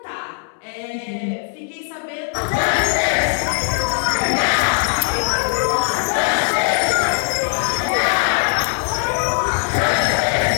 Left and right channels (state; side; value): silent; right; 55 dB below the other